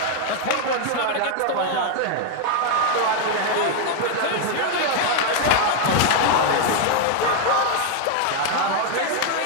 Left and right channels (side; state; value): both; different; correlation 0.00